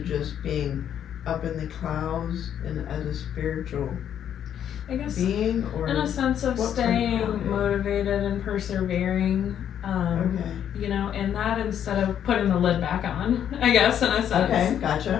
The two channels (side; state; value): right; quieter; 9.5 dB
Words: being up in the clouds and as a spiritual I guess being, or in a sense of what kind of staying grounded? motivated and persevering, Okay. you know, and that instead of putting the lid back on, I guess, in a sense. Okay,